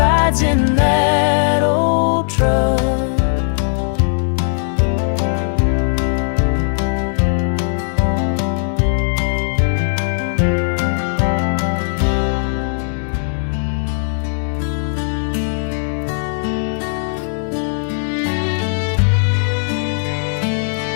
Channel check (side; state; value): right; silent; 67 dB below the other